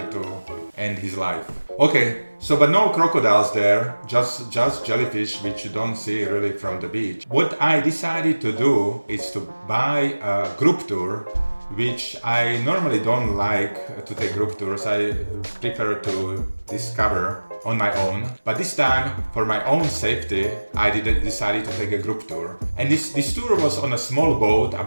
to end his life. Okay, so but no crocodiles there, just jellyfish, which you don't see really from the beach. What I decided to do is to buy a group tour, which I normally don't like to take group tours. I prefer to discover on my own. But this time, for my own safety, I decided to take a group tour. And this tour was on a small boat,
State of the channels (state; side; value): inverted; both; correlation -1.00